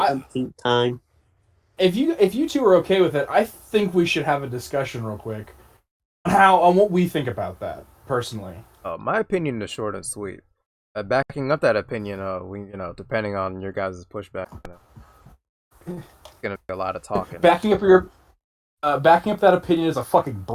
time. If you two are okay with it, I think we should have a discussion real quick on what we think about that personally. My opinion is short and sweet. Backing up that opinion, we depending on your guys' pushback, it's gonna be a lot of talking. Backing up that opinion is a fucking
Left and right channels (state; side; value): identical; both; correlation 1.00